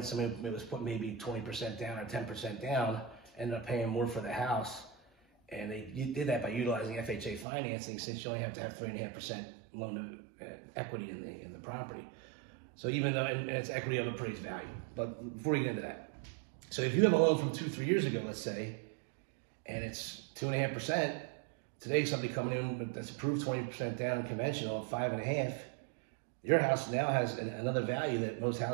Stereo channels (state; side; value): drops out; left; at 7.5 s